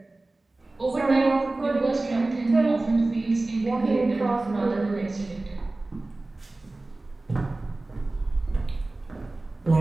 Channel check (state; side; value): quieter; left; 3.0 dB